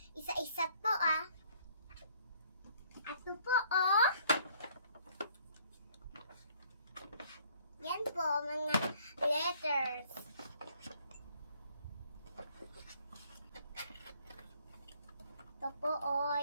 Isa-isa po Ito po Yan po, mga letters. Ito po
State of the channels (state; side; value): inverted; both; correlation -0.61